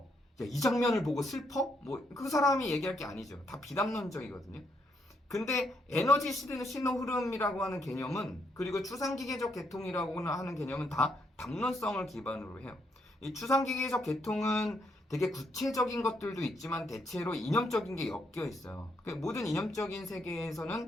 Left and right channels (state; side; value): normal; both; correlation 0.76